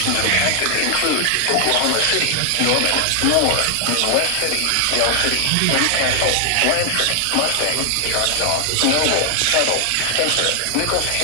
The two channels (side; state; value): both; different; correlation 0.00